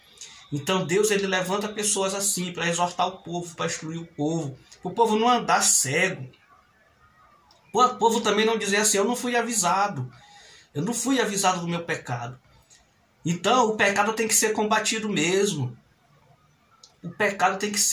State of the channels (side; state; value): both; identical; correlation 1.00